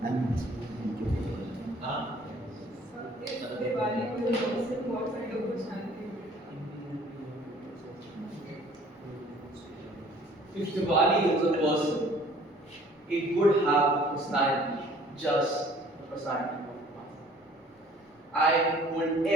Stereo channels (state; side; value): normal; both; correlation 0.54